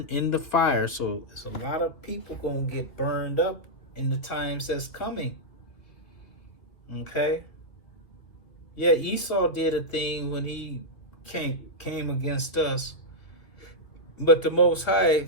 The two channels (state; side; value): late; right; 2.2 ms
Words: in the fire. So there's a lot of people going to get burned up in the times that's coming. Okay? Yeah, Esau did a thing when he came against us. But the Most High